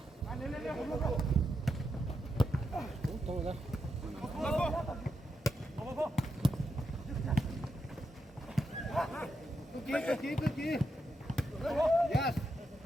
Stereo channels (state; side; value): normal; both; correlation 0.84